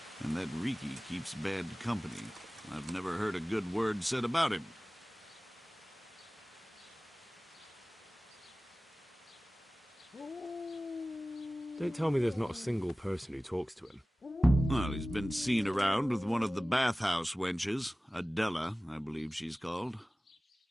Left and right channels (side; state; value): both; normal; correlation 0.97